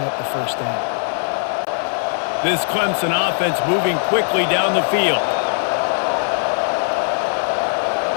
up the first down. This Clemson offense moving quickly down the field.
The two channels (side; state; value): right; silent; digital silence